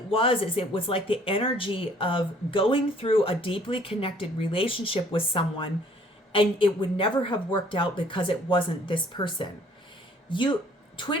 was is it was like the energy of going through a deeply connected relationship with someone, and it would never have worked out because it wasn't this person.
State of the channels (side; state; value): both; normal; correlation 0.58